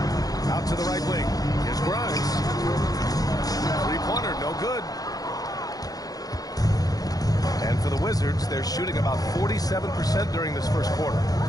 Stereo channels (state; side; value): late; right; 0.18 ms